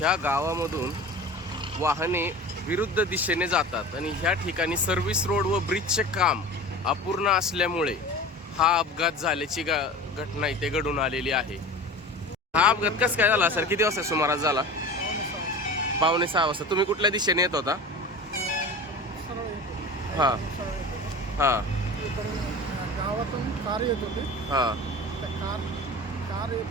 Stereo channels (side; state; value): both; normal; correlation 0.35